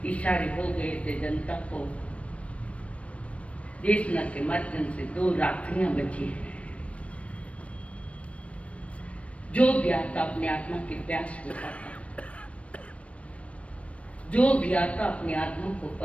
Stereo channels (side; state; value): right; late; 0.063 ms